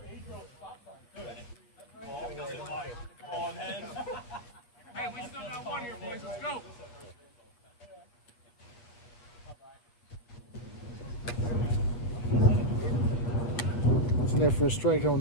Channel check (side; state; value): right; late; 8.1 ms